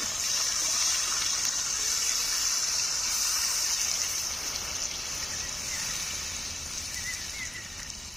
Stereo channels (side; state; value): both; normal; correlation 0.96